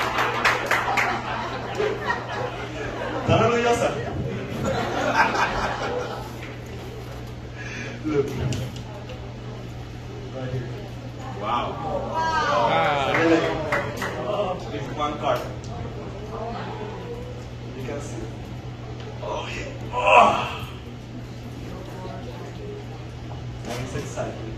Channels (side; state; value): both; identical; correlation 1.00